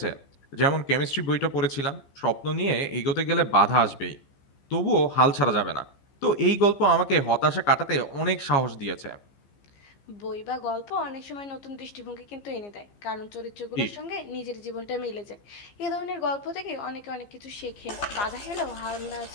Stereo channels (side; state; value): right; late; 15 ms